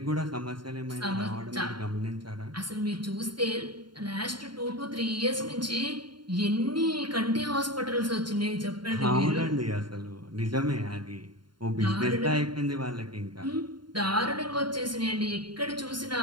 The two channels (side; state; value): left; late; 0.72 ms